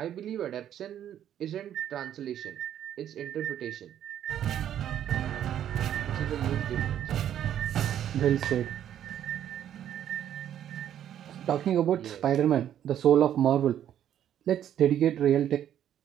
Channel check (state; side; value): quieter; left; 10.5 dB